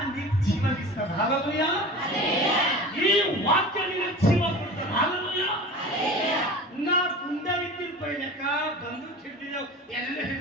ನಿಕ್ ಜೀವನಿಸ್ತದ. ಹಲ್ಲೆಲೂಯಾ. ಈ ವಾಕ್ಯ ನಿನಗೆ ಜೀವ ಕೊಡ್ತದೆ. ಹಲ್ಲೆಲೂಯಾ. ನಾ ಗುಂಡವಿದ್ದಿರ ಪೈಲಕ ಬಂದೂಕ್ ಹಿಡಿದಿದ್ದೇವೆ, ಎಲ್ಲ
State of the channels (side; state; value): both; normal; correlation 0.36